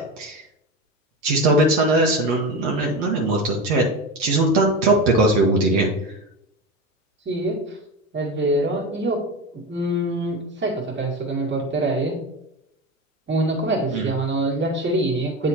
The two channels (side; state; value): both; normal; correlation 0.24